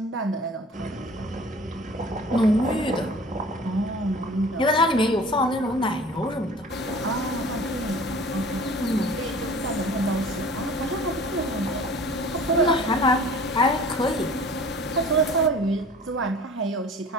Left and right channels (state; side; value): normal; both; correlation 0.45